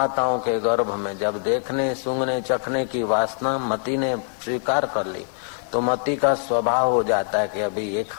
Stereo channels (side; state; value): right; silent; 62 dB below the other